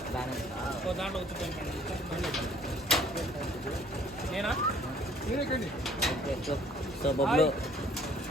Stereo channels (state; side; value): normal; both; correlation 0.57